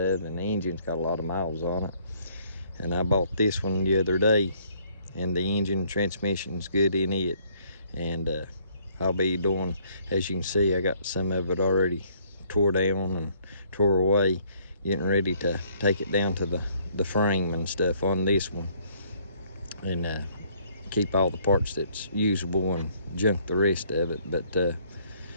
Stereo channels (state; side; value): inverted; both; correlation -0.64